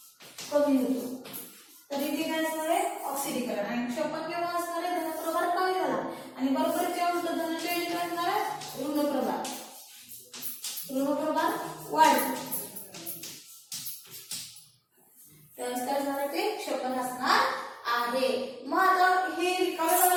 कमी होतो तर इथे काय असणार आहे, ऑक्सिडीकरण. आणि क्षपण केव्हा असणार आहे, धनप्रभार कमी झाला आणि बरोबर जेव्हा उलट धनाच्या इथे काय असणार आहे, ऋणप्रभार वाढला त्यावेळेस काय असणार आहे, ते क्षपण असणार आहे. मग आता हे रिकाम्या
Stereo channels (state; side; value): identical; both; correlation 1.00